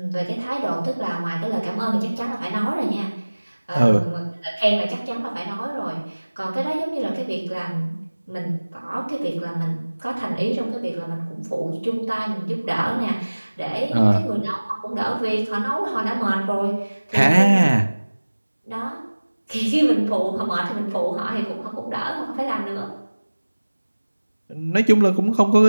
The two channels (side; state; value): both; inverted; correlation -1.00